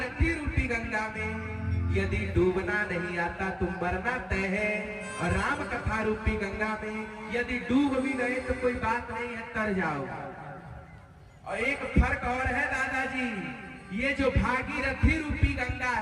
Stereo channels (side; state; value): both; identical; correlation 1.00